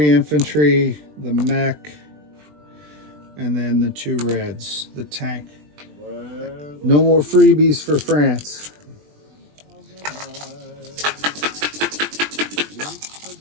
infantry, the mech, and then the 2 reds, the tank. No more freebies for France.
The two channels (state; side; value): late; left; 20 ms